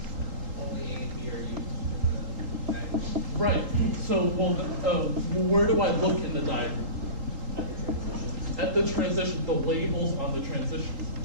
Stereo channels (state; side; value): late; left; 3.8 ms